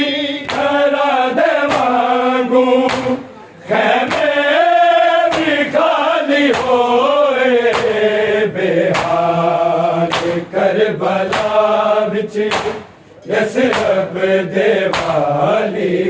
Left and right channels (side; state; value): both; identical; correlation 1.00